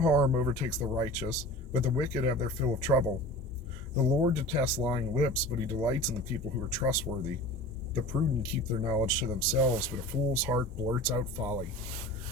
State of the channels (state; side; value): normal; both; correlation 0.37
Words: overtakes the righteous, but the wicked have their fill of trouble. The Lord detests lying lips, but he delights in the people who are trustworthy. The prudent keep their knowledge to themselves, but a fool's heart blurts out folly.